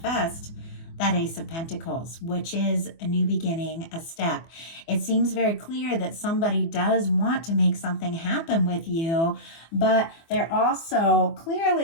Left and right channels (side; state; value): right; late; 24 ms